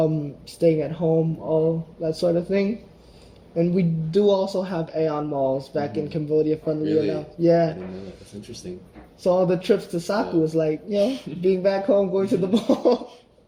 staying at home, all that sort of thing. And we do also have Aeon malls back in Cambodia, funnily enough. Yeah. I didn't know that. That's interesting. So all the trips to Saku was like, being back home, going to the mall.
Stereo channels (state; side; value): identical; both; correlation 1.00